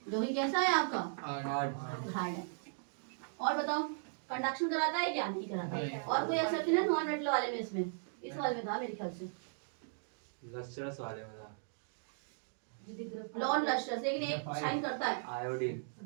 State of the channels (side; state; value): left; silent; digital silence